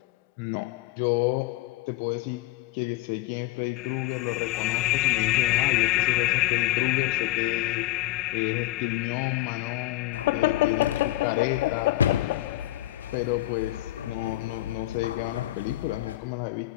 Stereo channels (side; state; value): right; quieter; 16.5 dB